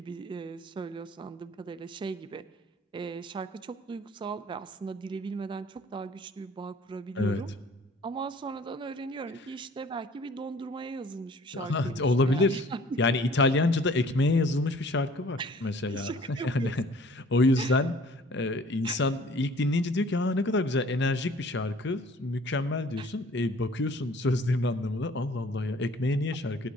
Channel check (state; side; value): normal; both; correlation 0.52